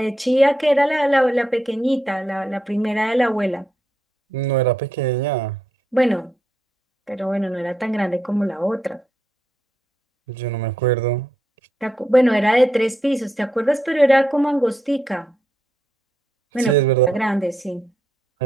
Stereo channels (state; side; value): normal; both; correlation 0.80